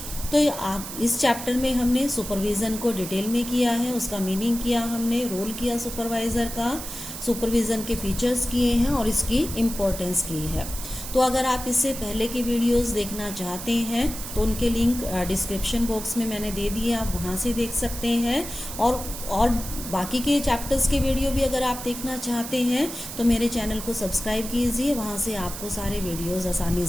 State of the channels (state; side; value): noise; right; hiss, 9 dB below the sound